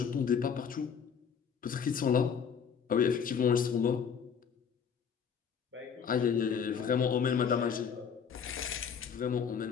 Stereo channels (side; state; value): right; quieter; 7.0 dB